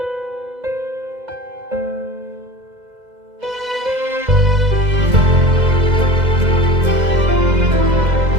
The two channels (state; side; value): late; left; 2.0 ms